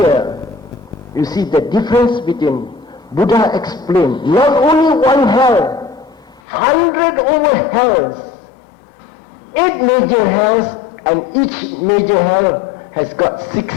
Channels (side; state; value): right; drops out; at 6.4 s